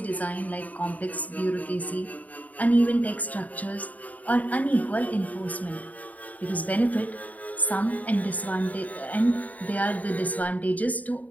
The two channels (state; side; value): late; right; 0.074 ms